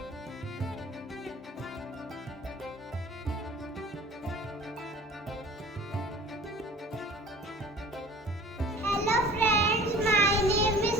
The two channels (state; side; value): normal; both; correlation 0.45